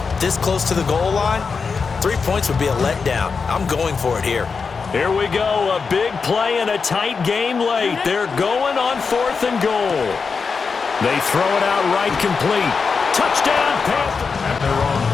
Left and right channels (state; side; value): quieter; right; 5.1 dB